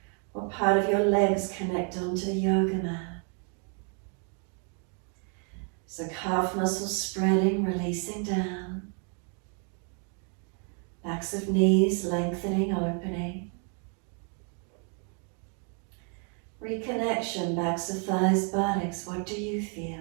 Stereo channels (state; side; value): quieter; left; 39.9 dB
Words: What part of your legs connect onto the yoga mat? So calf muscles spreading, releasing down. Backs of knees lengthening, opening. Reconnection, backs of thighs, buttocks. What do you